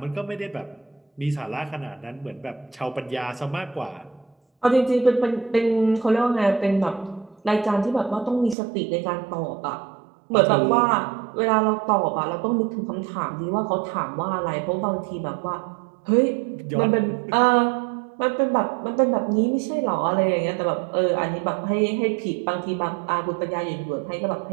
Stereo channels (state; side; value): drops out; left; at 8.6 s